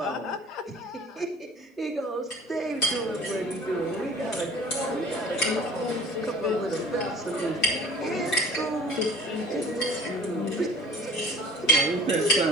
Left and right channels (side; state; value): both; normal; correlation 0.47